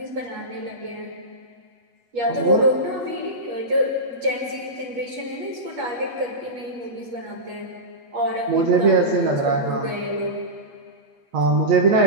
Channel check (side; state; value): left; late; 8.0 ms